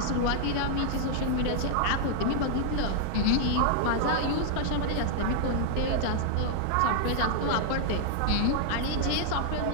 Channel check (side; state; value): both; different; correlation -0.01